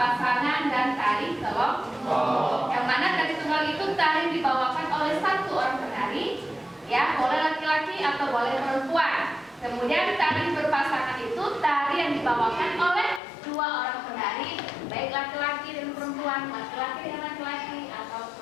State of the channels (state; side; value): drops out; right; at 13.2 s